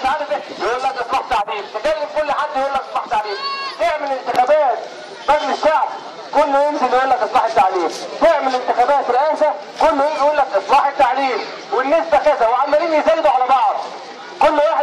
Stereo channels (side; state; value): both; identical; correlation 1.00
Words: عارف ايه، يقول لك اصلاح تعليم، تكلم كل حد يقول لك اصلاح تعليم، تعمل انتخابات مجلس الشعب كله ينزل يقول لك اصلاح التعليم، تعمل انتخابات رئاسه كله يجي يقول لك اصلاح التعليم، والنسبه كذا، وعمالين يزايدوا على بعض، كل